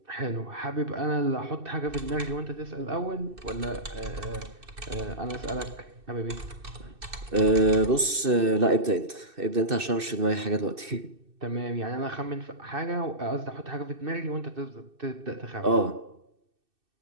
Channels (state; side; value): late; left; 2.6 ms